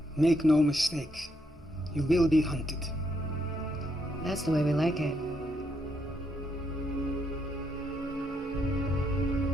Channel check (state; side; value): normal; both; correlation 0.77